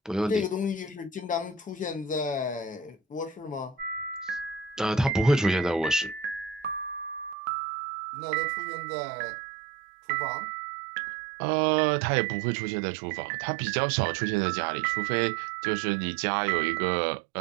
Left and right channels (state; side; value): drops out; left; at 7.4 s